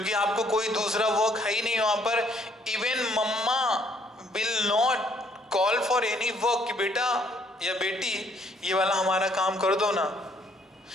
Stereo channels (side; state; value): both; normal; correlation 0.65